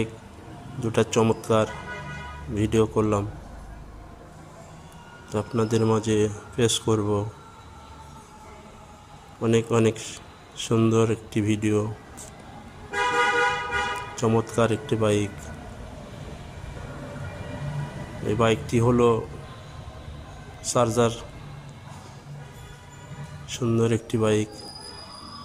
দুটা চমৎকার ভিডিও করলাম, তো আপনাদের মাঝে পেশ করব। অনেক অনেক সুন্দর একটি ভিডিও, চমৎকার একটি বাইক। এই বাইকটি হলো চার্জার, সুন্দর একটি বাইক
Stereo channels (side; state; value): both; identical; correlation 1.00